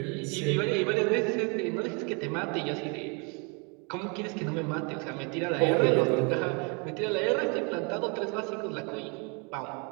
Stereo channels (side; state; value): left; quieter; 33.3 dB